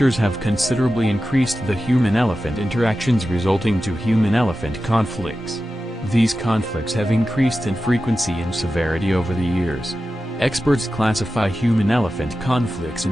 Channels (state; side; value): normal; both; correlation 0.93